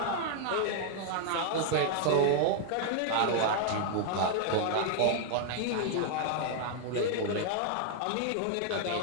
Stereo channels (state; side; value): different; both; correlation 0.00